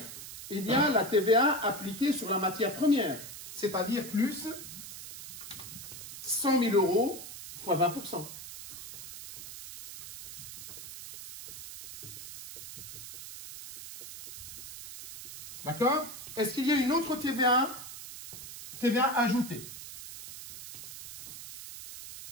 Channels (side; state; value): right; noise; hiss, 12 dB below the sound